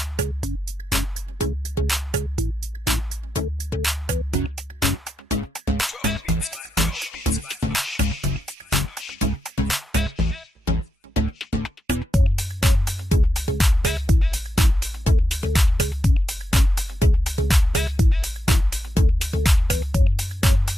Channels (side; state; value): both; normal; correlation 0.85